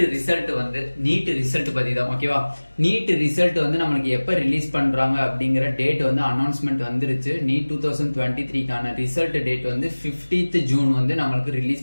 ரிசல்ட் பத்தி தான். ஓகேவா, நீட் ரிசல்ட் வந்து நம்மளுக்கு எப்ப ரிலீஸ் பண்றாங்க அப்படிங்கிற டேட் வந்து அனௌன்ஸ்மெண்ட் வந்துருச்சு. நீட் 2023க்கான ரிசல்ட் டேட் வந்து 15th ஜூன் வந்து நம்மளுக்கு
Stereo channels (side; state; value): both; inverted; correlation -1.00